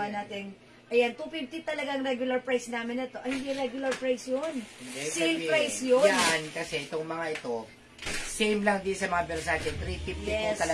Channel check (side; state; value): both; identical; correlation 1.00